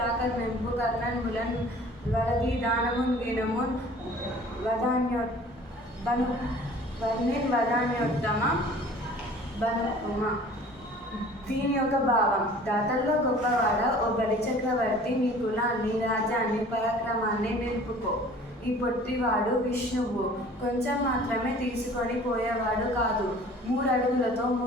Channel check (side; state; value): both; normal; correlation 0.48